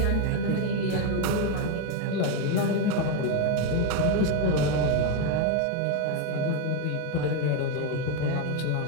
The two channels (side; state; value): both; different; correlation 0.02